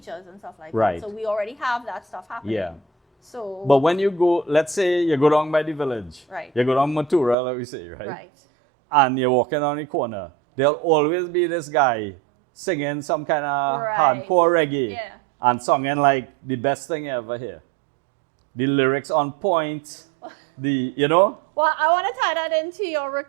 and stuff like right. that. So we already have that stuff happening. Yeah. So. But when you go, let's say you go down by the village. Right. You go down Matura, like we say, right? Right. And you're walking down the corner. There'll always be this guy singing some kind of hardcore reggae and singing like the best thing you ever hear. The lyrics on point, Well, I want to tie that into your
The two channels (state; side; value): drops out; left; at 7.4 s